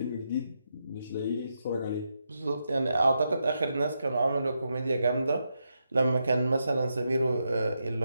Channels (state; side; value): inverted; both; correlation -0.84